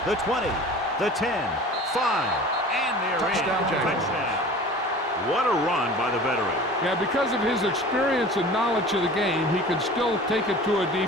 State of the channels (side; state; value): both; normal; correlation 0.41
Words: The 20, the 10, 5, and they're Touchdown, in. Jaguars. Touchdown. What a run by the veteran. Yeah, because of his experience and knowledge of the game, he can still take it to a